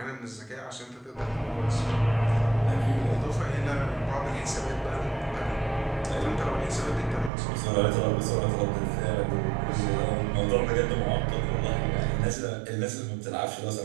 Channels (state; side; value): drops out; left; at 7.3 s